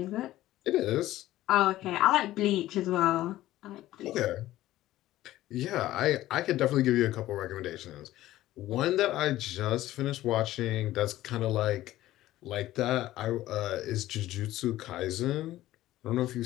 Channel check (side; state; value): right; quieter; 15.1 dB